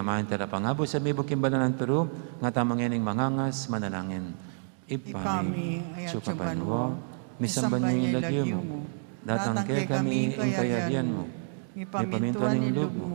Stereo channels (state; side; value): silent; left; 59 dB below the other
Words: talapangabo sa mibok kimbalanan pero nga tamang yaning mangangas manalangin. Ipami, ayat sukapanwa, misamban niyo ilagyo mo, datang kay kami ing kayarian mo, ipaminto ning loob